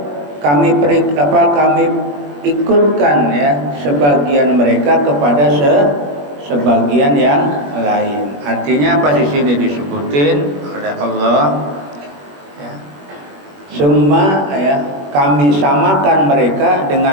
kami ikutkan ya sebagian mereka kepada sebagian yang lain. Artinya apa di sini disebutin oleh Allah ya. Summa ya, kami samakan mereka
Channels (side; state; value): left; late; 21 ms